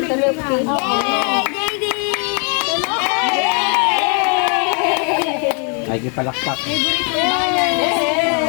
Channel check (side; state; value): right; quieter; 38.7 dB